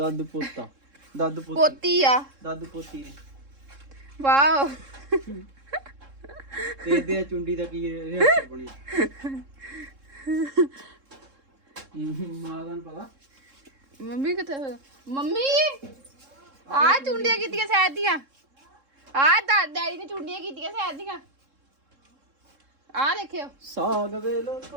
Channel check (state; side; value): late; left; 3.7 ms